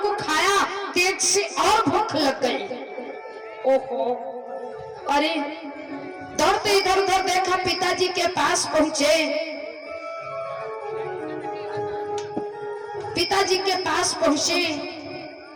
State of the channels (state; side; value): identical; both; correlation 1.00